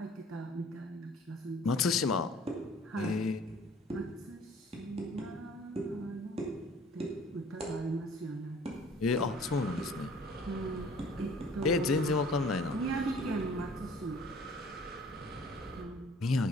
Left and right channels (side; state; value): both; normal; correlation 0.52